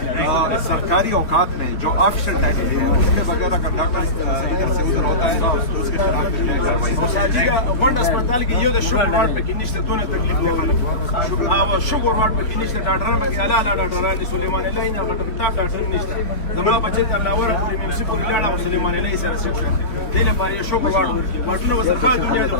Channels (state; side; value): late; right; 3.5 ms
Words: सरकारी औकात में जो ऑफिशियल टाइमिंग है उसके बगैर अगर डॉक्टर इधर से उधर होता है तो उसके खिलाफ वन अस्पताल की ये शुगर वार्ड पे किन्नी से दोनों तकलीफ दिखाने शुगर वार्ड पे किन्नी से डॉक्टर में के अला डॉक्टर ने सुलेमान अलाई ना डॉक्टर निश्चित जमा बच्चे तलावर मुंशी को लाड़ा सुलेमान अलाई सर से दिले पर ये शुगर वार्ड वाटनो बस खा दुनिया जो